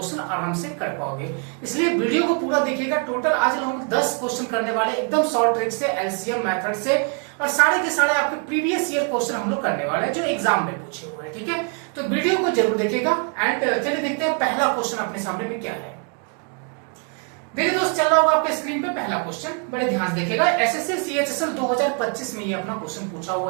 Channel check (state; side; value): quieter; left; 38.7 dB